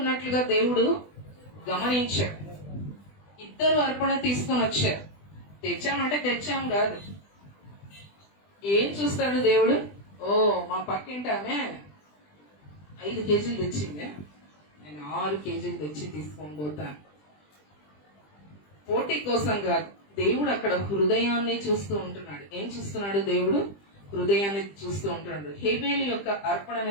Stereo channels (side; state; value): right; late; 20 ms